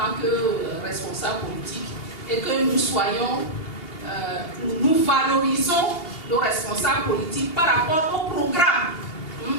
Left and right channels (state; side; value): late; right; 2.8 ms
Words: que responsables politiques et que nous soyons, nous valorisons nos responsables politiques par rapport aux